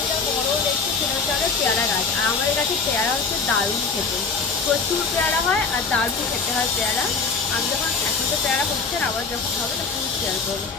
একটা বড় দেখছি, সেটা হচ্ছে আমাদের পেয়ারা গাছ। আর আমাদের কাছে পেয়ারা হচ্ছে দারুণ খেতে, প্রচুর পেয়ারা হয় আর দারুণ খেতে হয় পেয়ারা। আমি যখন এখন তো পেয়ারা হচ্ছে না, আবার যখন হবে তখন শেয়ার করবো।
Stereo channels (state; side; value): quieter; right; 4.8 dB